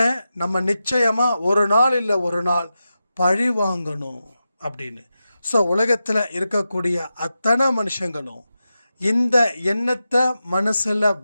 நம்ம நிச்சயமாக ஒரு நாள் இல்லை ஒரு நாள் பழி வாங்கணும் அப்படின்னு. ஸோ உலகத்தில் இருக்கக்கூடிய அத்தனை மனுஷங்களும் இந்த எண்ணத்தை மனசில்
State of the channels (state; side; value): inverted; both; correlation -0.90